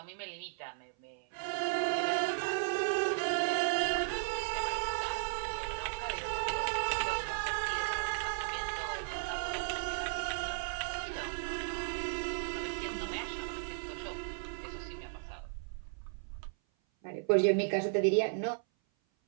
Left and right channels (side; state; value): left; silent; 54 dB below the other